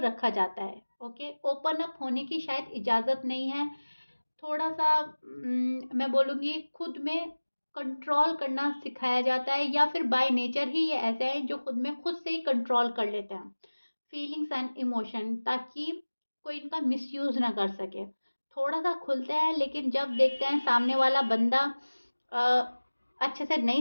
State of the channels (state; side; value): inverted; both; correlation -1.00